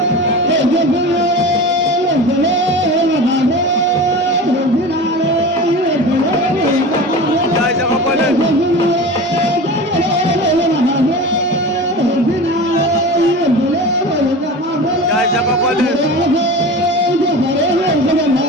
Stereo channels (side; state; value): both; normal; correlation 0.32